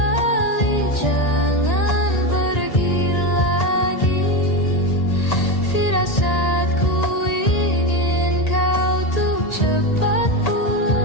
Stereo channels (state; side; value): late; right; 1.8 ms